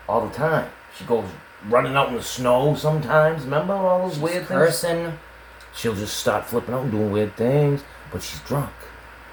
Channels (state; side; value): identical; both; correlation 1.00